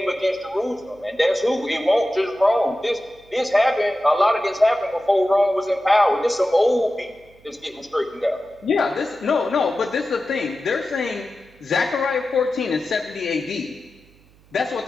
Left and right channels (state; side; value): noise; right; hum, 29 dB below the sound